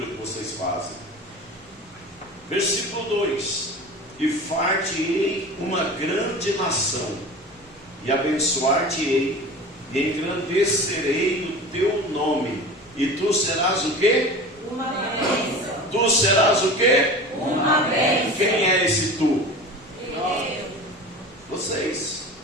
que vocês fazem. Versículo 2: e far-te-ei uma grande nação, e abençoar-te-ei, e engrandecerei o teu nome, e tu serás o quê? Uma bênção. Tu serás o quê? Uma bênção. Quem é esse tu? Eu. Vocês,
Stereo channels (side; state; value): both; normal; correlation 0.35